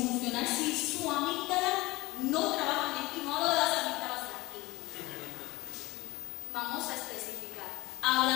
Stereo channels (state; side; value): quieter; right; 21.1 dB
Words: si su amígdala no trabaja bien, y no hablo de las amígdalas de aquí. Vamos